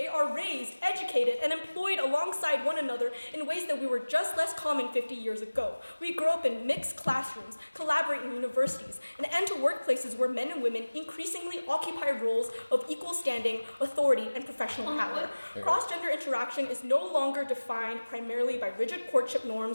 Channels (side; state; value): both; inverted; correlation -1.00